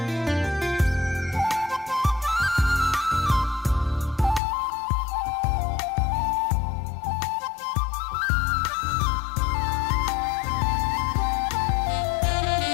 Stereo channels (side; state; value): right; drops out; at 4.4 s